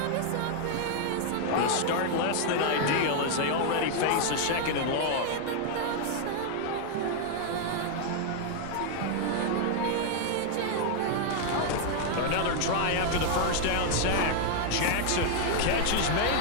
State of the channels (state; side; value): different; both; correlation 0.00